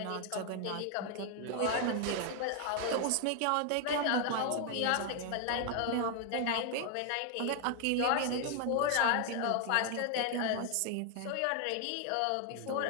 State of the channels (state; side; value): different; both; correlation 0.00